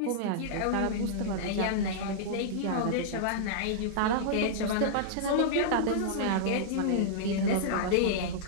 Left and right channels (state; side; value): different; both; correlation -0.02